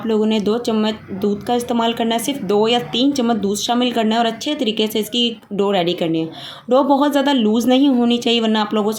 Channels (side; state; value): both; identical; correlation 1.00